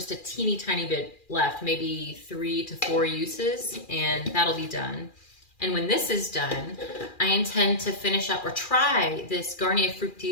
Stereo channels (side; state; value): right; late; 2.4 ms